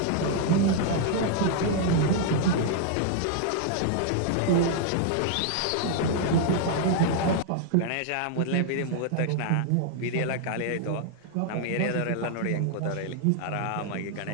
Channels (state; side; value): different; both; correlation 0.00